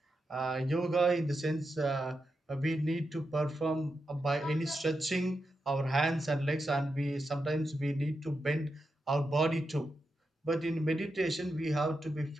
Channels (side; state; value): both; normal; correlation 0.87